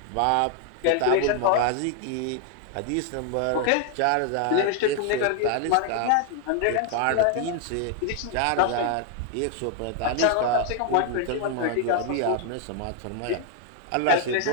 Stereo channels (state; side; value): different; both; correlation 0.00